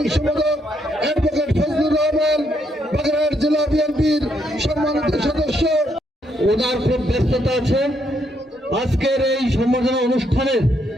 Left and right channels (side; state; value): both; normal; correlation 0.75